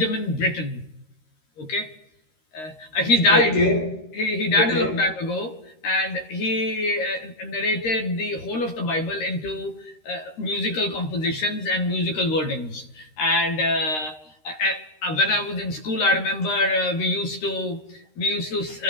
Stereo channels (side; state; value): right; late; 13 ms